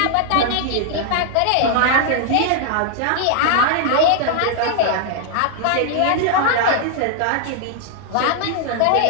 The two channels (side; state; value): both; different; correlation 0.00